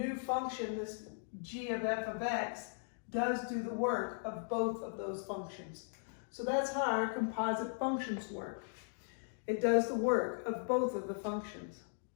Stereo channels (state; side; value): silent; right; digital silence